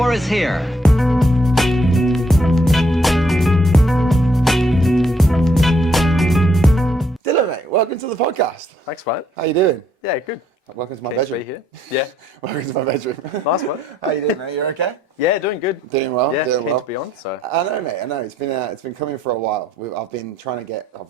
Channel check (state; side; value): normal; both; correlation 0.69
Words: is here. Dylan, mate, welcome to the podcast. Thanks, mate. How you doing? Yeah, good. Welcome to my Keen to bedroom. be here. Yeah. Welcome to my bedroom. Nice one. How you doing, mate? You okay? Yeah, doing good. Doing well. Yeah, doing keen well. to be on. So I know, mate. I know. It's been coming for a while. I've been trying to get.